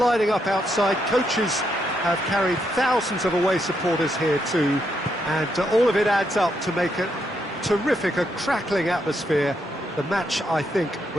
up outside. Coaches have carried thousands of away supporters here too, and all of it adds up to make a terrific, a crackling atmosphere. The match, I think,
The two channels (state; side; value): normal; both; correlation 0.79